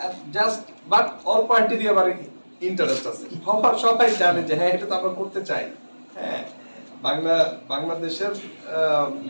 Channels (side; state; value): both; inverted; correlation -1.00